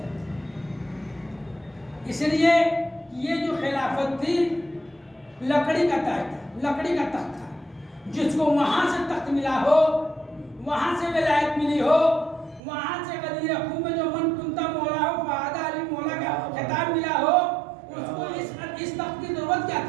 اس لیے یہ جو خلافت تھی لکڑی کا تخت تھا، جس کو وہاں سے تخت ملا ہو، وہاں سے ولایت ملی ہو، وہاں سے غدیر خون میں جو من کنتا مولا ہو فہذا علی مولا کا خطاب ملا ہو، اس کو اس تخت کی ضرورت کیا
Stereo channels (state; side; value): drops out; left; at 12.6 s